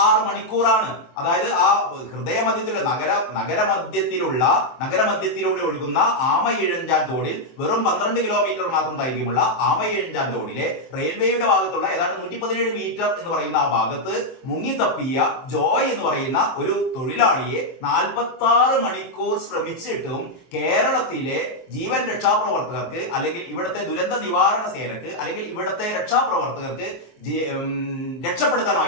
മണിക്കൂറാണ്. അതായത് ആ ഹൃദയമധ്യത്തിലുള്ള നഗരമധ്യത്തിലൂടെ ഒഴുകുന്ന ആമയിഴഞ്ചാൻ തോടിൽ വെറും 12 കിലോമീറ്റർ മാത്രം ദൈർഘ്യമുള്ള ആമയിഴഞ്ചാൻ തോടിലെ റെയിൽവേയുടെ ഭാഗത്തുള്ള ഏതാണ്ട് 117 മീറ്റർ എന്ന് പറയുന്ന ആ ഭാഗത്ത് മുങ്ങിത്തപ്പിയ ജോയ് എന്ന് പറയുന്ന ഒരു തൊഴിലാളിയെ 46 മണിക്കൂർ ശ്രമിച്ചിട്ടും കേരളത്തിലെ ജീവൻ രക്ഷാപ്രവർത്തകർക്ക് അല്ലെങ്കിൽ ഇവിടുത്തെ ദുരന്ത നിവാരണ സേനക്ക് അല്ലെങ്കിൽ ഇവിടുത്തെ രക്ഷാപ്രവർത്തകർക്ക്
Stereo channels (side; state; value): right; late; 23 ms